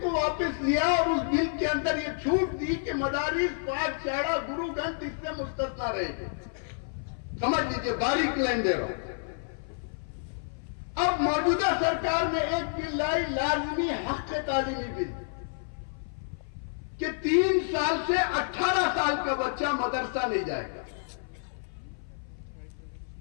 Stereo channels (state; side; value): silent; right; 55 dB below the other